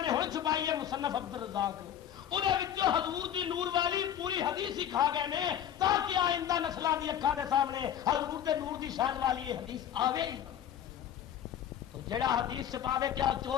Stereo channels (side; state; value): right; quieter; 10.1 dB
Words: نے ہوں چھپائی ہے مصنف عبد الرزاق انہوں حضور دی نور والی پوری حدیث ہی کھا گئے نے تاکہ آئندہ نسلوں کی اکھاں دے سامنے حضور دے نور دی شان والی یہ حدیث آوے ہی نہ۔ تو جڑا حدیث چھپاوے کیا